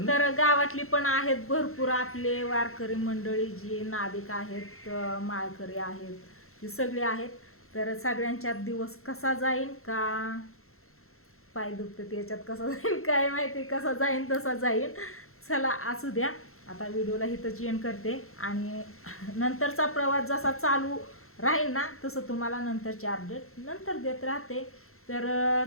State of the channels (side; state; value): right; late; 0.62 ms